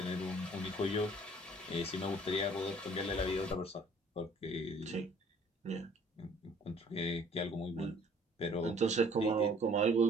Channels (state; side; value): normal; both; correlation 0.56